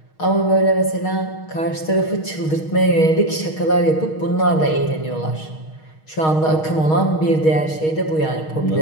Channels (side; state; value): right; late; 6.4 ms